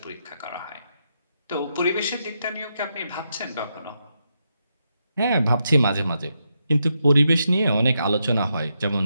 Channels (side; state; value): both; inverted; correlation -0.83